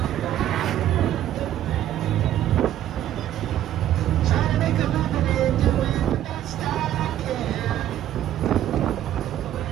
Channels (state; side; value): quieter; left; 12.0 dB